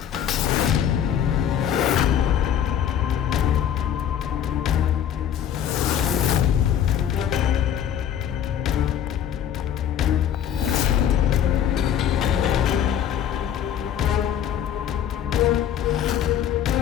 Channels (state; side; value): quieter; right; 9.6 dB